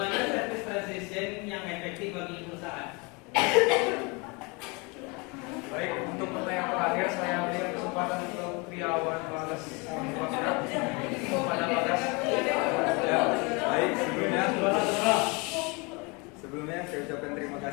service transition yang efektif bagi perusahaan. Baik, untuk pertanyaan terakhir saya berikan kesempatan untuk Triawan Bagas kepada Bagas. Ya, baik, sebelumnya saya ucapkan terima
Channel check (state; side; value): quieter; right; 29.1 dB